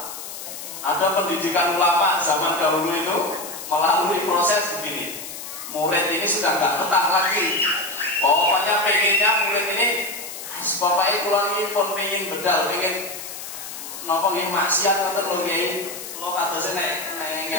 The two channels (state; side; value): noise; left; hiss, 10 dB below the sound